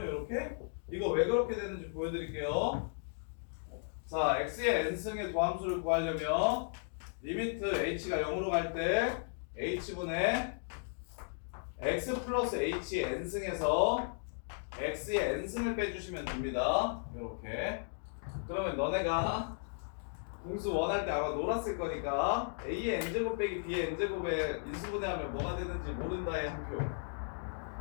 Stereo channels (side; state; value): right; silent; digital silence